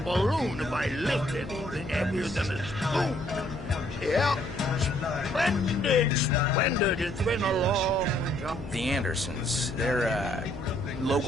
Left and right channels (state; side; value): noise; left; hum, 13 dB below the sound